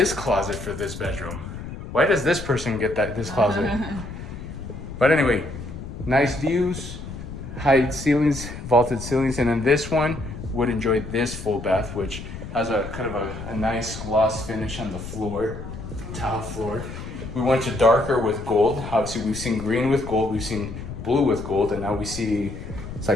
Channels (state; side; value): noise; left; rumble, 10 dB below the sound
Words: closet for this bedroom. Why does this person get this closet? But anyway, nice views, high ceilings, vaulted ceilings. And then this one would enjoy this full bath, which has a kind of a nice gloss finish on the floor, tile floor. We went to darker with gold. Obviously we've seen green with gold, we've seen blue with gold, and now we see it's